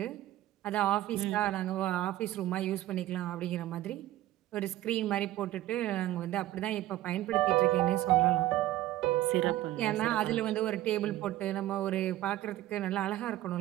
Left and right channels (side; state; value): left; quieter; 15.0 dB